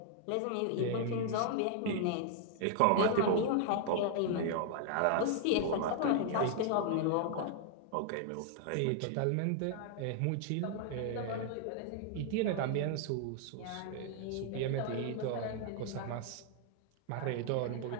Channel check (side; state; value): both; different; correlation 0.00